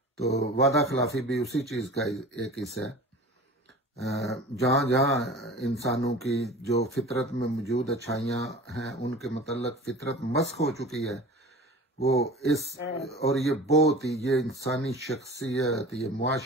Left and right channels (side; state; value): both; normal; correlation 0.38